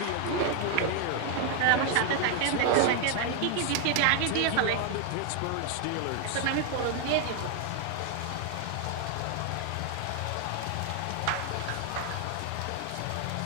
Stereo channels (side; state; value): both; different; correlation 0.00